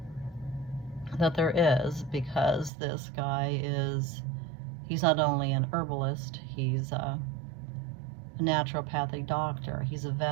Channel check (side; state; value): left; drops out; at 2.7 s